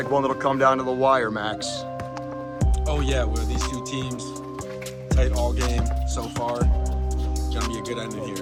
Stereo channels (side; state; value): both; identical; correlation 1.00